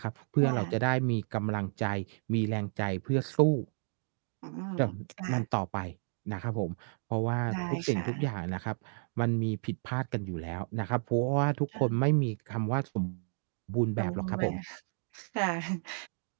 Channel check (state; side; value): silent; left; 56 dB below the other